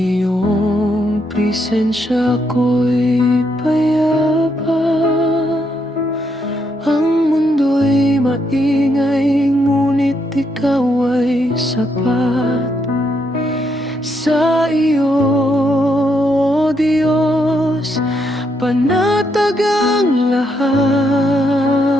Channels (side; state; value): both; normal; correlation 0.77